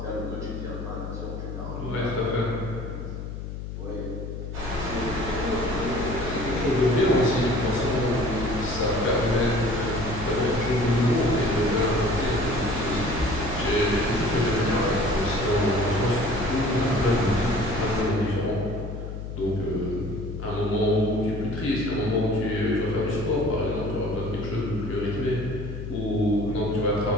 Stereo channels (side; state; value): left; noise; hum, 8 dB below the sound